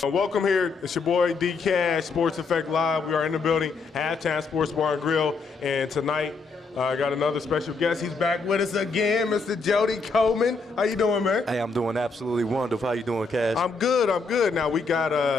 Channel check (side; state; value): right; quieter; 4.2 dB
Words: Welcome here. It's your boy D Cash, Sports Effect Live. We are in the building, Halftime Sports Bar and Grill, and tonight I got another special guest. He's back with us again, Mr. Jody Coleman. How you doing, man? Hey, I'm doing absolutely wonderful. How you doing, Cash? I'm good. I'm good. Now we got